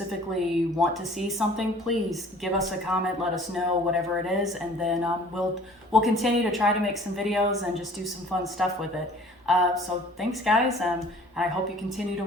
want to see something, please give us a comment, let us know whatever it is, and then we'll continue to try to make some videos and just do some fun stuff with it. So thanks guys, and I hope you continue to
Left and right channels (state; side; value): normal; both; correlation 0.50